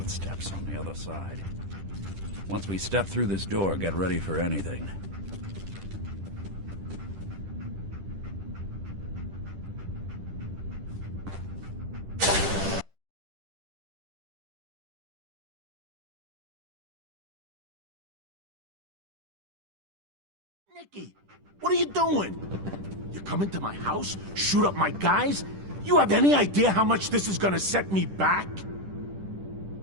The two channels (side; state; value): left; late; 10 ms